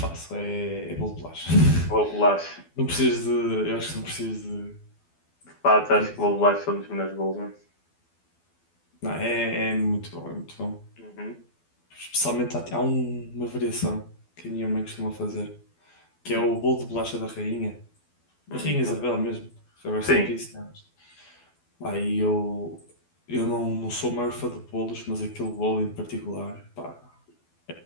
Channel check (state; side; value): late; right; 12 ms